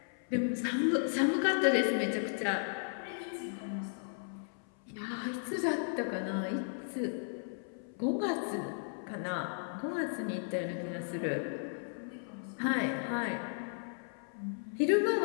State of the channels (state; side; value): silent; right; 54 dB below the other